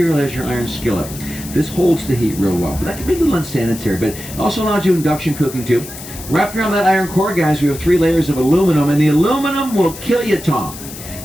as your iron skillet. This holds the heat real well. But that can be a little unsanitary, but it also allows you induction cooking, too. Wrapped around that iron core, guys, we have 3 layers of aluminum, and the aluminum will kill you, Tom.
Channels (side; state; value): left; noise; hiss, 13 dB below the sound